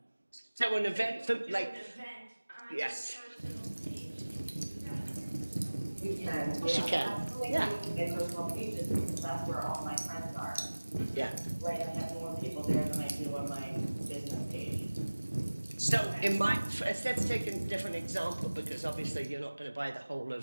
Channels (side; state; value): both; inverted; correlation -1.00